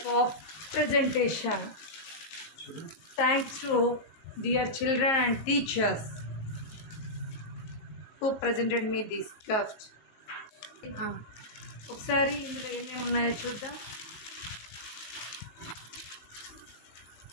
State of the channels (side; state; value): right; late; 19 ms